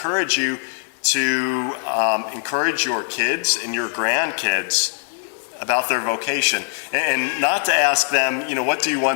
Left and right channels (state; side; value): silent; right; 65 dB below the other